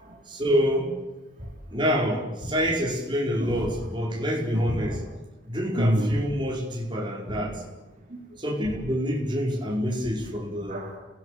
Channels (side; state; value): both; normal; correlation 0.63